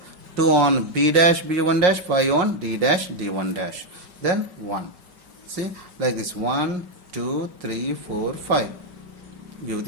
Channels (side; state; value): left; late; 5.5 ms